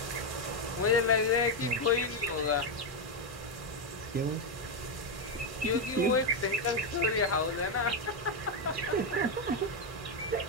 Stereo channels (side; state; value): both; normal; correlation 0.04